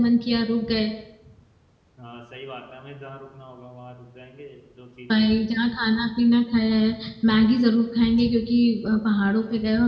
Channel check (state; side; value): identical; both; correlation 1.00